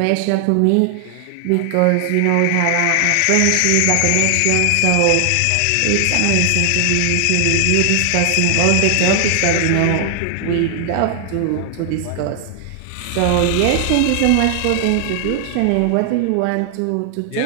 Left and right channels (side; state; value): both; different; correlation 0.00